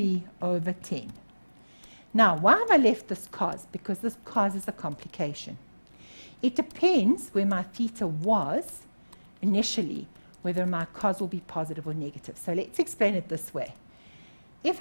over 10. Now, why have I left this cos? Because this cos is a complication. It depends where my theta was initially, whether my cos will be positive or negative. So let's explain it this way. If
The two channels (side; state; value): both; inverted; correlation -1.00